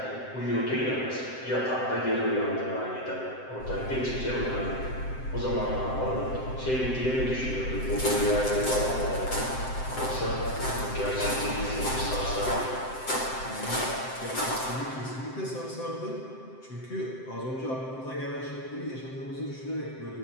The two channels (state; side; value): late; right; 7.7 ms